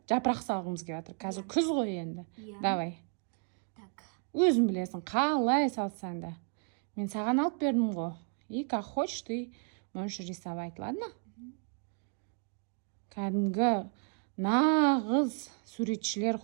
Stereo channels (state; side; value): quieter; left; 39.0 dB